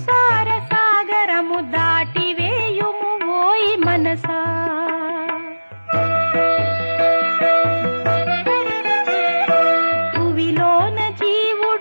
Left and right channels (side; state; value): both; inverted; correlation -1.00